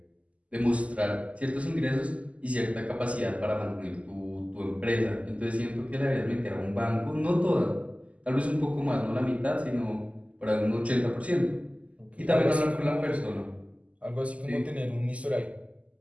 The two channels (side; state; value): left; late; 0.066 ms